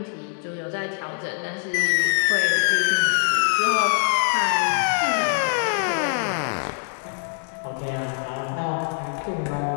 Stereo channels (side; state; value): right; silent; 63 dB below the other